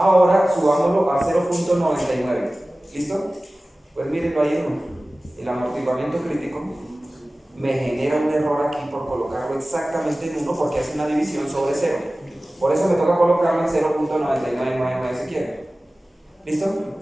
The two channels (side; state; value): both; normal; correlation 0.97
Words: subámoslo a 0.99. ¿Listo? Pues mírenlo ahí uno. El amortiguamiento crítico me genera un error aquí por colocarlo exactamente en 1 porque hace una división sobre 0. Por eso me toca colocarlo en 0.9999 si quiere. ¿Listo?